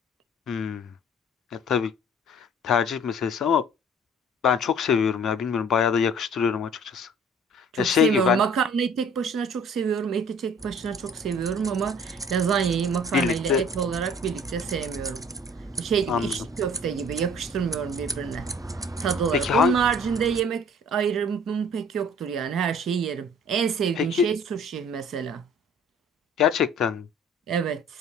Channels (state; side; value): normal; both; correlation 0.51